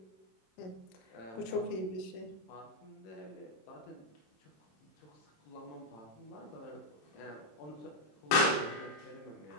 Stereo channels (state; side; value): late; right; 27 ms